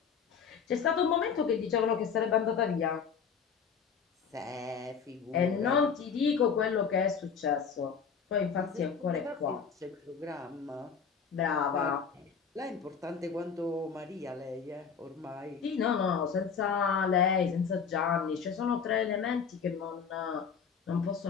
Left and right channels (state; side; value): quieter; right; 6.5 dB